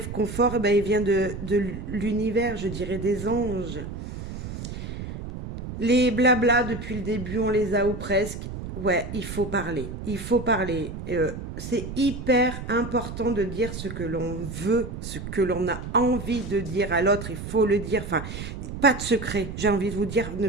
ben, il vient de l'univers, je dirais des anges. Les blabla, depuis le début, on les a ou presque. Ouais, il faut parler. Il faut parler. C'est hyper important de dire ce que l'on veut, ce que l'on a envie de dire à l'autre. Il faut le dire. Enfin, pas de secret. J'ai envie de vous dire, ne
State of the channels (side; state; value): right; noise; rumble, 8 dB below the sound